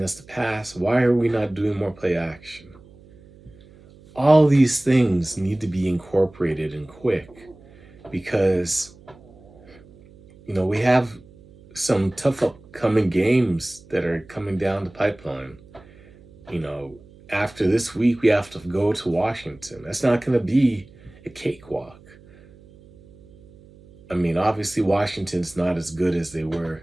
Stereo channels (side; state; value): right; noise; hum, 24 dB below the sound